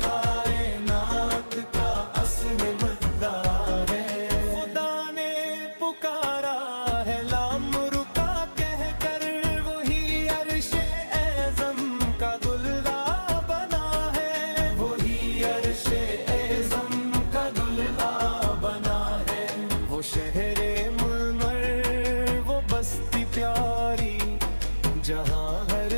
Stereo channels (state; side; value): inverted; both; correlation -1.00